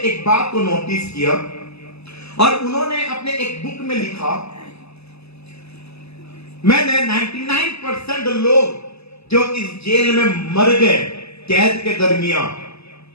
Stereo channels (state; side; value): late; right; 0.79 ms